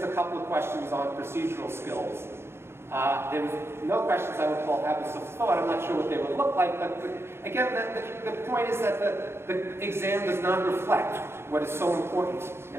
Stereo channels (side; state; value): left; late; 0.12 ms